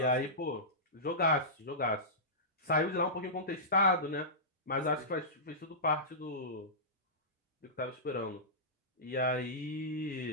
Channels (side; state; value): both; normal; correlation -0.17